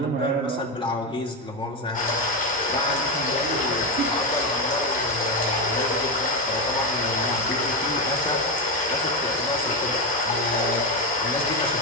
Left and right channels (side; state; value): both; normal; correlation 0.11